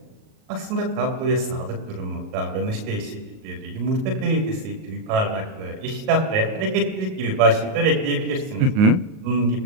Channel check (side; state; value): left; late; 38 ms